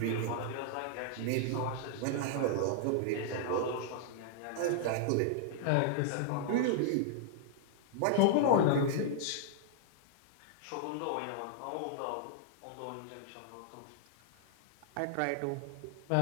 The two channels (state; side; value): different; both; correlation -0.01